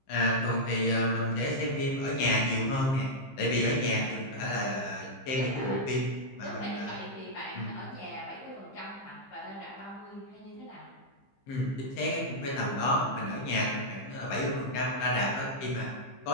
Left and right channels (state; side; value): late; right; 15 ms